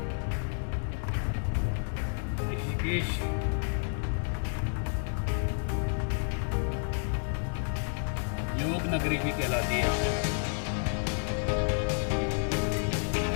योग नगरी भी कहलाती है।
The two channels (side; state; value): right; silent; 58 dB below the other